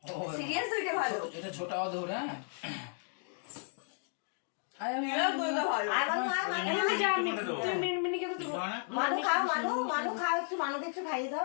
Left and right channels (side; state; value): right; silent; 55 dB below the other